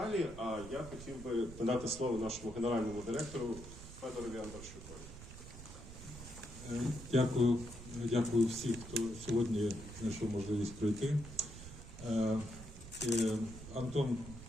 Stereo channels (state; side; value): noise; right; rumble, 13 dB below the sound